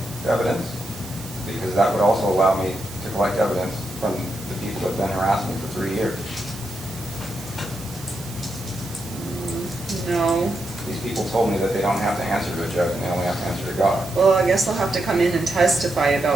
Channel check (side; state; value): right; noise; hiss, 15 dB below the sound